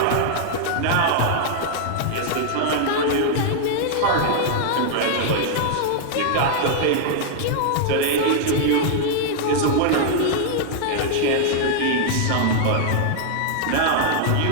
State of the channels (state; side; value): different; both; correlation -0.01